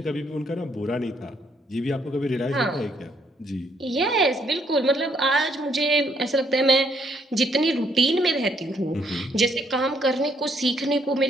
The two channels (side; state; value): both; normal; correlation 0.70